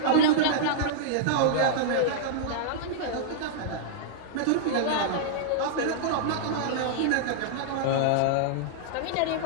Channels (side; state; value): both; different; correlation -0.02